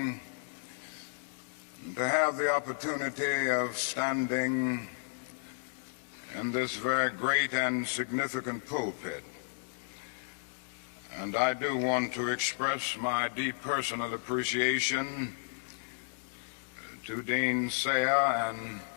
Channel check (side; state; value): right; silent; 55 dB below the other